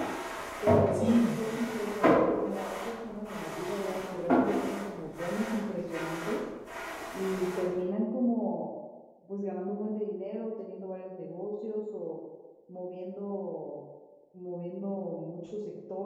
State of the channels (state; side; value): identical; both; correlation 1.00